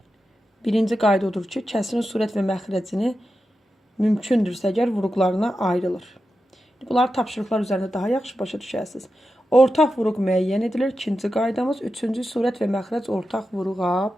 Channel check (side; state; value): both; normal; correlation 0.90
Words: kəsirin surət və məxrəcini mümkündürsə əgər vuruqlarına ayrılır. Bunlar tapşırıqlar üzərində daha yaxşı başa düşərsiniz. Ortaq vuruq müəyyən edilir. İkinci qaydamız. Üçüncü surət və məxrəc ortaq vuruğa